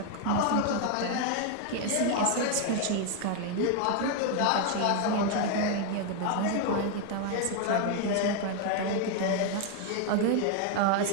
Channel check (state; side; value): different; both; correlation 0.01